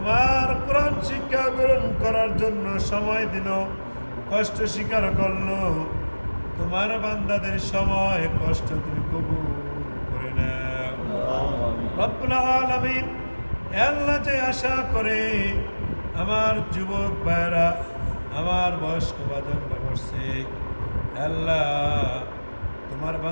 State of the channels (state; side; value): inverted; both; correlation -1.00